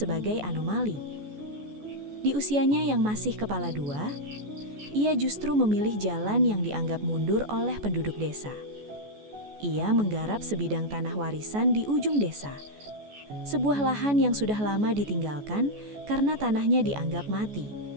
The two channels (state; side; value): late; left; 14 ms